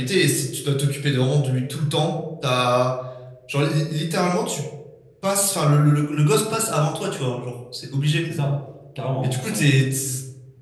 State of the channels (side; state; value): both; identical; correlation 1.00